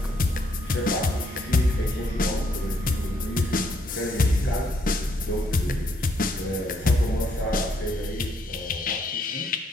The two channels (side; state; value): both; normal; correlation 0.72